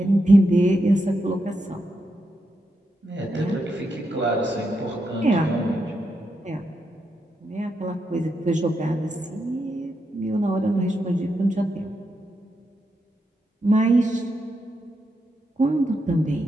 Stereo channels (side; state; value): both; normal; correlation 0.84